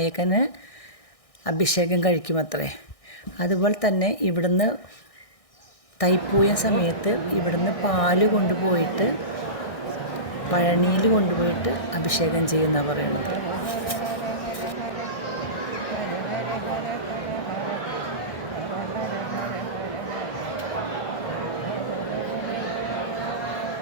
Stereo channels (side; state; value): right; late; 1.6 ms